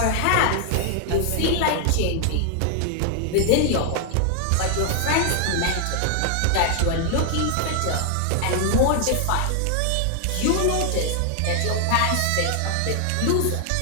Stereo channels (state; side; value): different; both; correlation 0.00